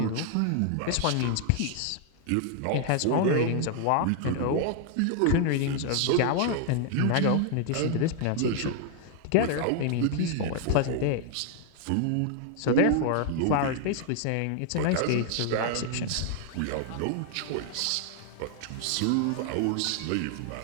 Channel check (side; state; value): both; different; correlation 0.00